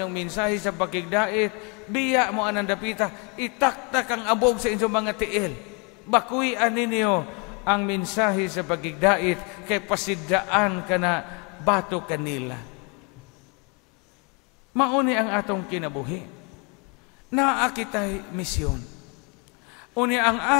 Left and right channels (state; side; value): quieter; right; 33.6 dB